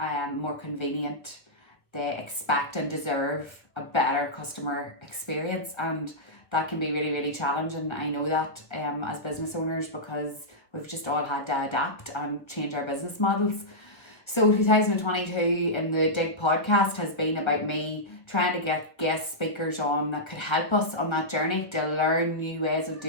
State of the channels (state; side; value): late; right; 1.1 ms